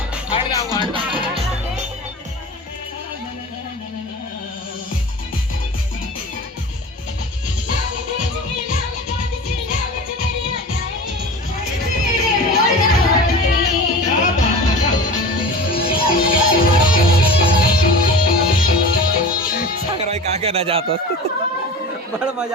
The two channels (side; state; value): both; normal; correlation 0.35